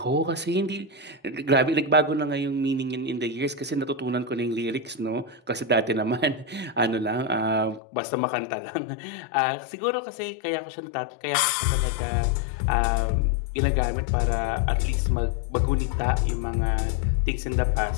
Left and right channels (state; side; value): drops out; right; at 7.8 s